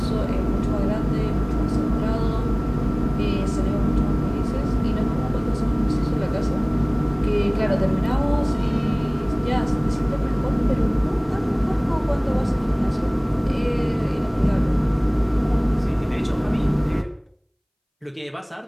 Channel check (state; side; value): identical; both; correlation 1.00